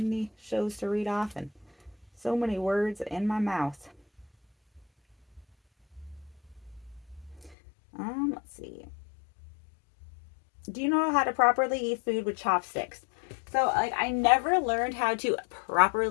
shows to read off and so many words in my mouth. Let's see. Do you know how to properly eat food with chopsticks? So, like, I never learned how to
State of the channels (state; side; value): drops out; right; at 7.6 s